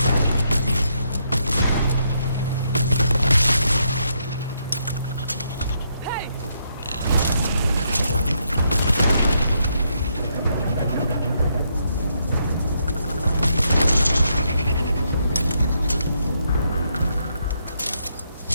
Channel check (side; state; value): both; inverted; correlation -0.76